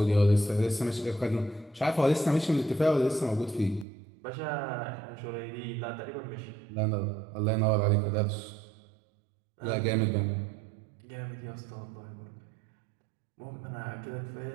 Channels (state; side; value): drops out; left; at 3.9 s